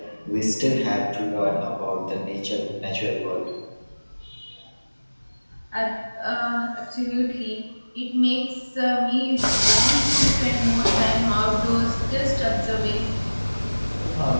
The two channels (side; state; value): both; inverted; correlation -1.00